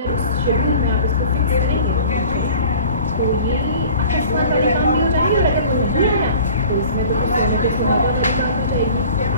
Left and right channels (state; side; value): inverted; both; correlation -0.46